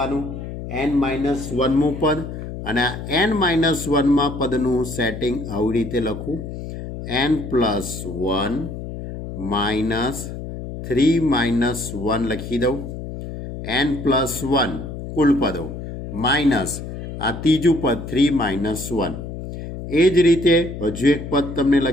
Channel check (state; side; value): noise; left; hum, 9 dB below the sound